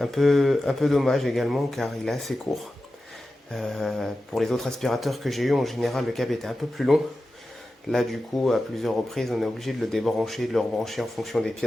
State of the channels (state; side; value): normal; both; correlation 0.93